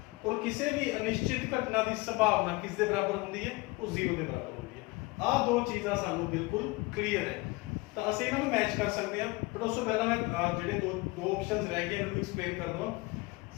ਔਰ ਕਿਸੇ ਵੀ ਅਨਿਸ਼ਚਿਤ ਘਟਨਾ ਦੀ ਸੰਭਾਵਨਾ ਕਿਸ ਦੇ ਬਰਾਬਰ ਹੁੰਦੀ ਹੈ? ਉਹ 0 ਦੇ ਬਰਾਬਰ ਹੁੰਦੀ ਹੈ। ਆਹ ਦੋ ਚੀਜ਼ਾਂ ਸਾਨੂੰ ਬਿਲਕੁਲ ਕਲੀਅਰ ਹੈ, ਤਾਂ ਅਸੀਂ ਇਹਨਾਂ ਨੂੰ ਮੈਚ ਕਰ ਸਕਦੇ ਹਾਂ। ਬਟ ਉਸ ਤੋਂ ਪਹਿਲਾਂ ਮੈਂ ਜਿਹੜੇ ਦੋ ਆਪਸ਼ਨਸ ਰਹਿ ਗਏ ਇਹਨਾਂ ਨੂੰ ਐਕਸਪਲੇਨ ਕਰ ਦਵਾਂ।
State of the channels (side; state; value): right; quieter; 23.5 dB